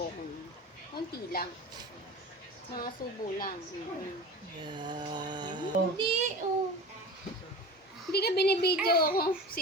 ko. Konti lang. Mga subo lang. Yeah. Hindi, oh. Hindi ka binibidyo ako. Si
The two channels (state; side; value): normal; both; correlation 0.34